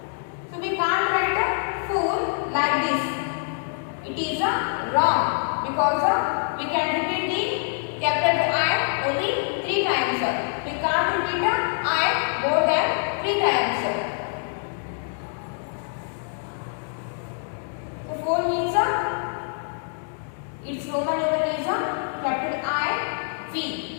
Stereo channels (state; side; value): silent; right; 62 dB below the other